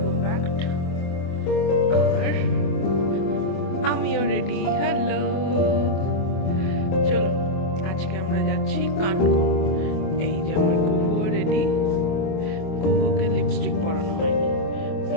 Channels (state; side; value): late; right; 24 ms